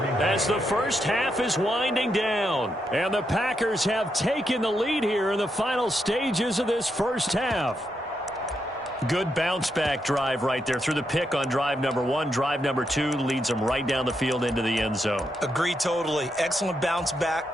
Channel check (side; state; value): both; normal; correlation 0.82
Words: as the first half is winding down. And the Packers have taken the lead here in the final stages of this first half. Good bounce-back drive right there through the pick on drive number 1. Drive number 2 leads them right down the field into the end zone. Agree totally. Excellent bounce